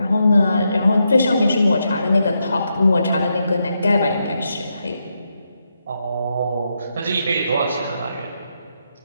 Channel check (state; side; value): inverted; both; correlation -0.83